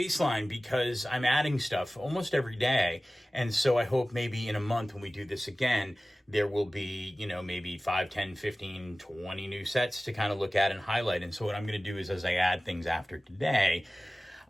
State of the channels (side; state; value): both; normal; correlation 0.97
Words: because I'm adding stuff almost every day, and so I hope maybe in a month when we do this again, there will be, maybe 5, 10, 15, 20 new sets to kind of look at and highlight. And so what I'm going to do is as I add things after today,